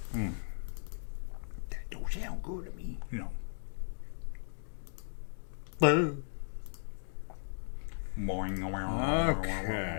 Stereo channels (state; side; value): silent; right; digital silence